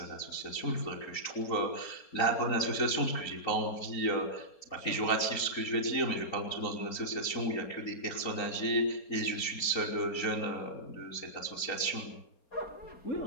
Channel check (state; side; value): late; right; 3.9 ms